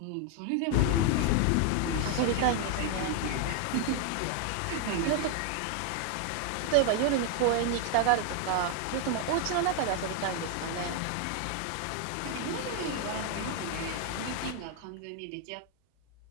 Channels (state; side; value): different; both; correlation 0.00